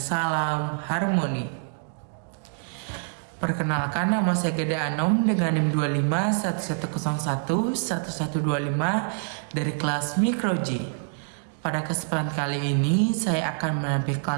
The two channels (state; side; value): silent; left; digital silence